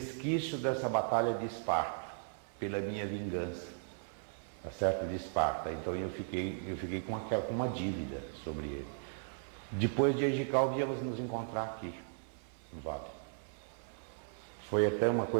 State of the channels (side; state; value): left; silent; 53 dB below the other